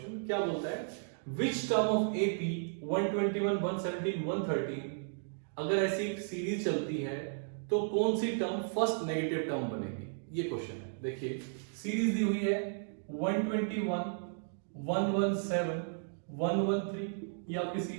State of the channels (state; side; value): silent; left; digital silence